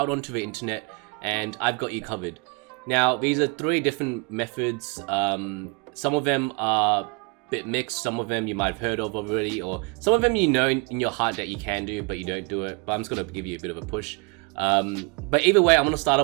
onto the internet, and I've got you covered. Now, these are 3 different methods. Some of them are a bit mixed, some of them you might have heard of already, or some of them you know in your heart that you can do, but you don't do it. But I'm just going to give you a bit of a push. But either way, I'm going to start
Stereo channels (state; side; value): quieter; left; 31.1 dB